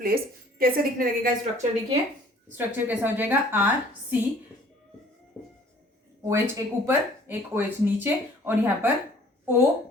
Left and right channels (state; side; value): normal; both; correlation 0.54